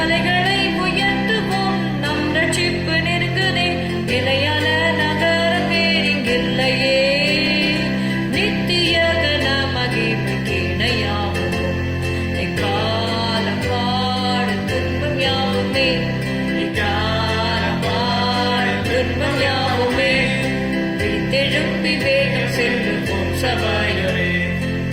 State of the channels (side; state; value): both; identical; correlation 1.00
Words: உயர்த்துவோம், நம் ரட்சிப்பு நெருங்குதே, நிலையான நகரம் வேறிங்கில்லையே. நித்திய கன மகிமைக்கு இணையாவோம், எக்காலம் பாடும் துன்பம் யாவுமே, எக்காலம் பாடும் துன்பம் யாவுமே. விழித்தெழும்பி வேகம் செல்லுவோம் சபையோரே,